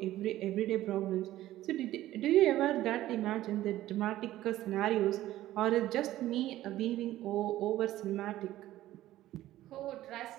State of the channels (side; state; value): left; quieter; 14.7 dB